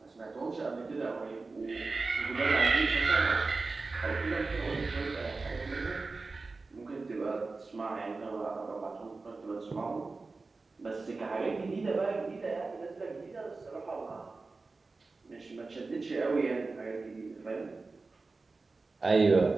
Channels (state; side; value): quieter; left; 3.8 dB